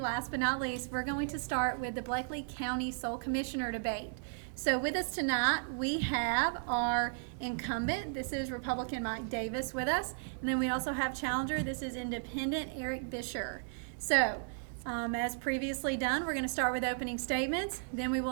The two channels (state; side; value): silent; left; 55 dB below the other